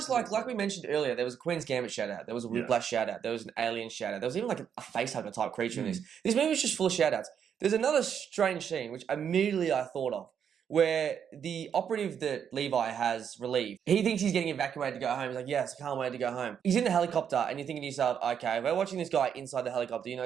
like we mentioned earlier. There was a Queen's Gambit shout out. There was a Whiplash shout out. There was an Alien shout out. There was even like a facehugger type creature in this. This movie was just full of shout outs. There's another strange scene which immediately I thought of, where the operative that Levi has relieved, he thinks he's getting evacuated to go home. He's like, yes, I can't wait to go home. He's in the helicopter and you're thinking to yourself, okay, we're watching this guy inside the helicopter. You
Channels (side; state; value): left; quieter; 8.0 dB